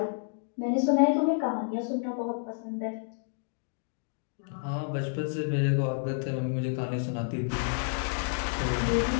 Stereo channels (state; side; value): silent; right; 58 dB below the other